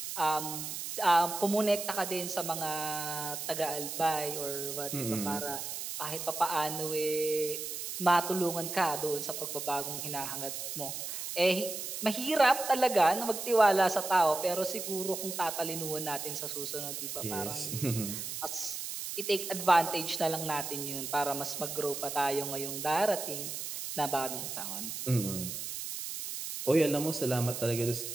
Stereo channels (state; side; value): noise; right; hiss, 6 dB below the sound